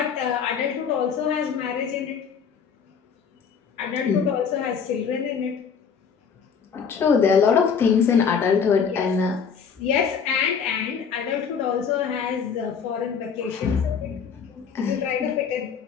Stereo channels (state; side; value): quieter; right; 6.5 dB